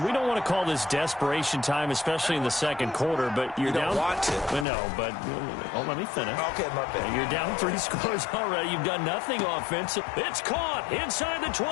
we don't want to call this desperation time, especially in the 2nd quarter, but you're down. You don't want to. No, but let me finish. Okay, my bad. You're down 3 scores already. You've done nothing offensive. It's caught inside the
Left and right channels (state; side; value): drops out; right; at 4.7 s